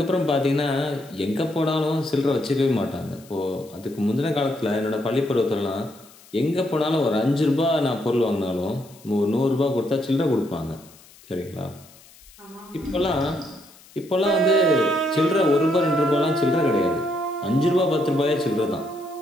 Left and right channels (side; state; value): left; noise; hiss, 24 dB below the sound